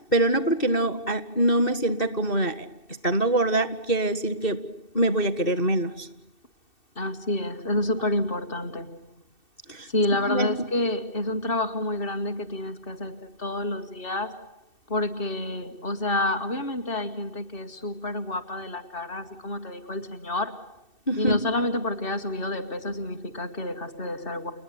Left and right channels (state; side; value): late; right; 2.6 ms